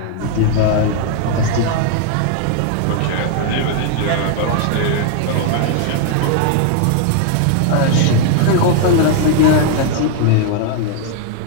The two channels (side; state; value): both; different; correlation 0.00